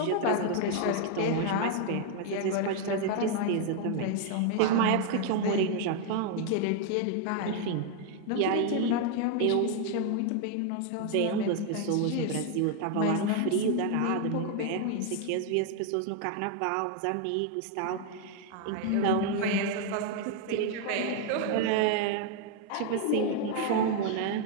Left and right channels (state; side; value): different; both; correlation 0.00